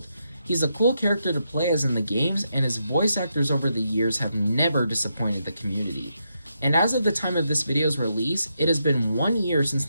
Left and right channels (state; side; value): inverted; both; correlation -0.82